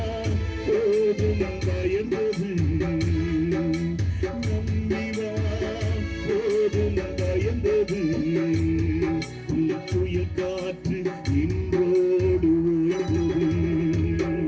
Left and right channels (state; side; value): identical; both; correlation 1.00